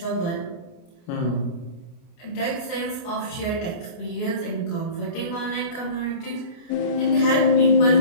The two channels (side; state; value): right; late; 28 ms